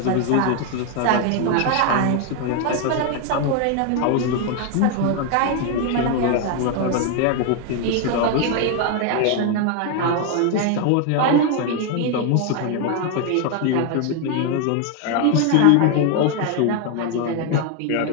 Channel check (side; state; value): both; different; correlation 0.01